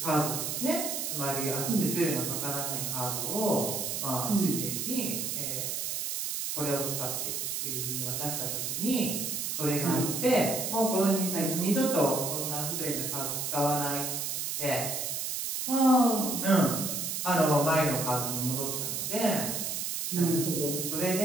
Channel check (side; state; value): right; noise; hiss, 2 dB below the sound